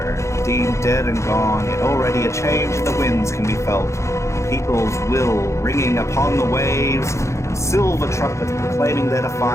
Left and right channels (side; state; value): right; late; 0.14 ms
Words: deemed dead and gone, yet already a change in the winds can be felt. People's will ringing upon the waves, and silver trumpets proclaiming their